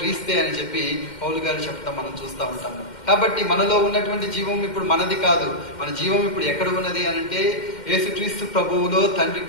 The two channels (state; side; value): late; right; 2.1 ms